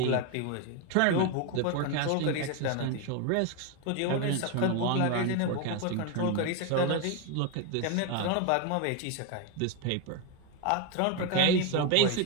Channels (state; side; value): different; both; correlation 0.02